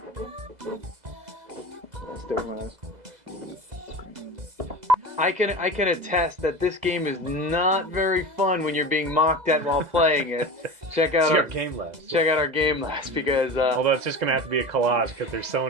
Stick my eyes. I can attest that this game is not very fun when you're being mocked at while playing it. Check out our Game Labs. Check out our Game Labs because. Although it's just gonna have to be a collage because there's so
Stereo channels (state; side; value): late; left; 2.0 ms